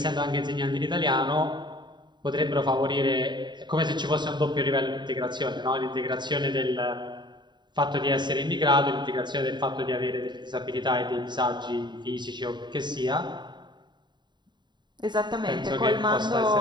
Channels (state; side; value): late; left; 0.22 ms